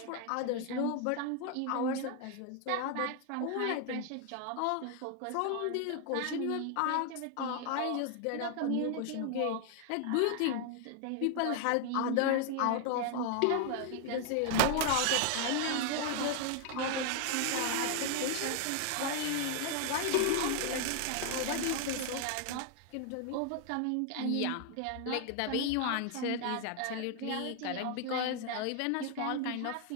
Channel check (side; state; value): both; different; correlation 0.00